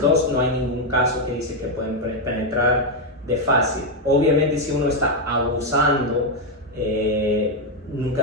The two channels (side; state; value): both; normal; correlation 0.03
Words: 2, no hay ningún caso que dice que pueden penetrar de fácil. Obviamente, si uno está abusando, nunca